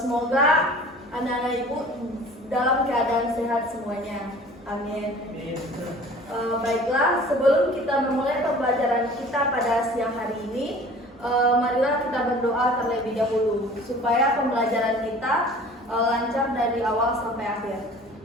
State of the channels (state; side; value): normal; both; correlation 0.46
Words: anak-anak ibu dalam keadaan sehat semuanya. Amin. Baiklah, sebelum kita memulai pembelajaran kita pada siang hari ini, marilah kita berdoa terlebih dahulu supaya pembelajaran kita lancar dari awal sampai akhir.